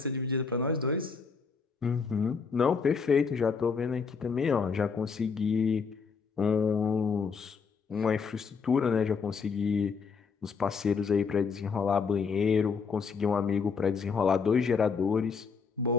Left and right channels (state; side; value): quieter; right; 5.4 dB